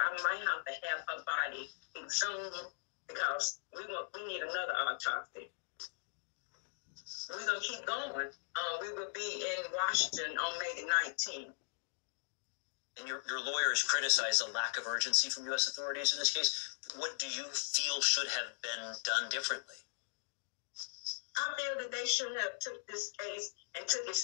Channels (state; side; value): silent; right; digital silence